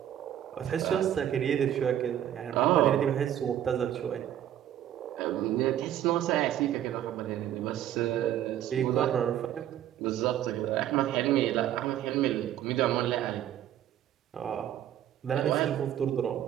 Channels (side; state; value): left; quieter; 11.3 dB